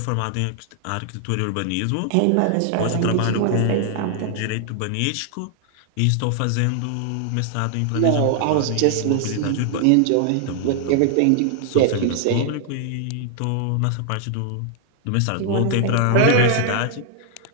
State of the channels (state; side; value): different; both; correlation 0.00